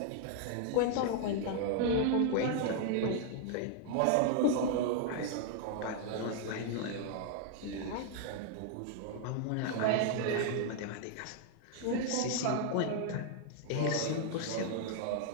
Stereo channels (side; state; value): both; different; correlation 0.00